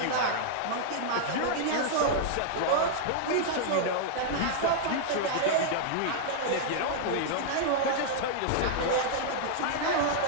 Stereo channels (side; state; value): both; different; correlation -0.01